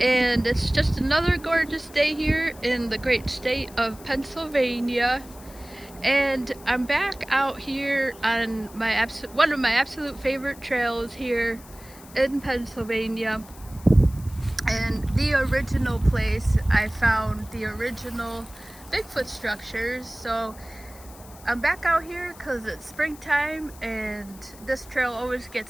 and it's just another gorgeous day here in the great state of Pennsylvania. And I'm back out here on one of my absolute favorite trails here in Pennsylvania. And the original place I found the original Bigfoot structures. So I'm back out here because it's springtime and this trail always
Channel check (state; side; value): noise; left; hiss, 21 dB below the sound